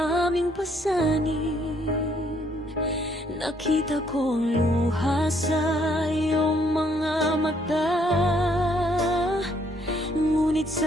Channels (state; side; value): normal; both; correlation 0.67